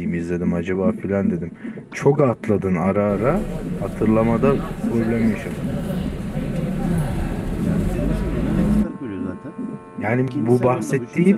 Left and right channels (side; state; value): both; identical; correlation 1.00